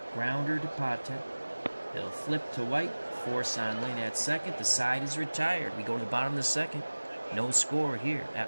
Grounder to Patek. He'll flip to White. Force on Lynn at second. The side is retired. We go to the bottom of the second. No score here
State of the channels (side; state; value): both; inverted; correlation -1.00